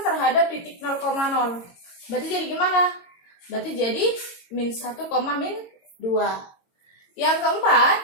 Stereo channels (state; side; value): late; right; 22 ms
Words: terhadap titik 0,0. Berarti jadi gimana? Berarti jadi min 1, min 2. Yang keempat,